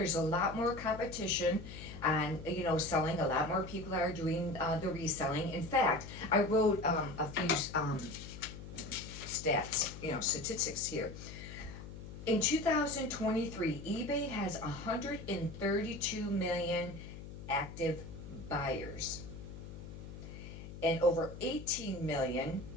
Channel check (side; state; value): left; noise; hum, 12 dB below the sound